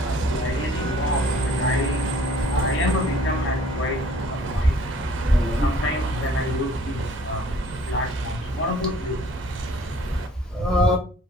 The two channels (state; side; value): normal; both; correlation 0.55